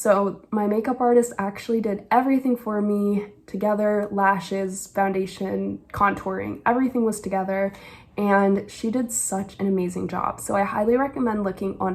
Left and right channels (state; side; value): identical; both; correlation 1.00